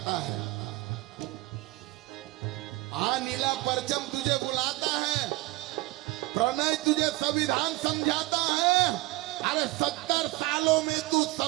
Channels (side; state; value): left; quieter; 20.0 dB